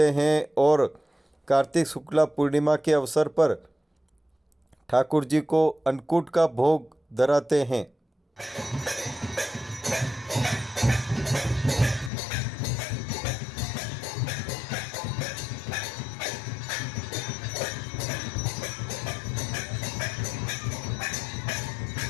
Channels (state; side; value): drops out; right; at 12.1 s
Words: हैं और कार्तिक शुक्ला पूर्णिमा के अवसर पर ठाकुर जी को अन्नकूट का भोग धराते हैं।